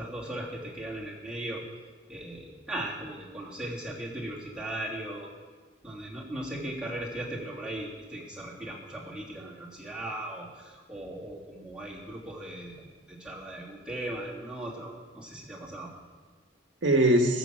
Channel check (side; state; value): both; normal; correlation 0.40